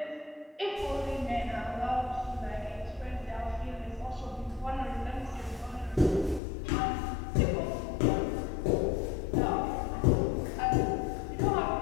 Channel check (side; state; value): right; drops out; at 6.4 s